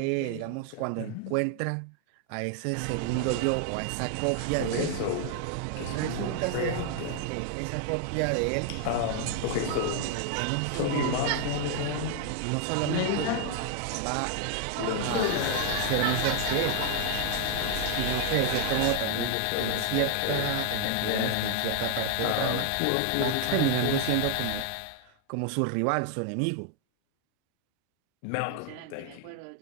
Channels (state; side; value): different; both; correlation 0.00